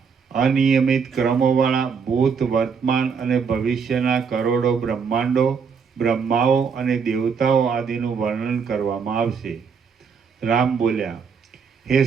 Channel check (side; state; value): left; quieter; 6.0 dB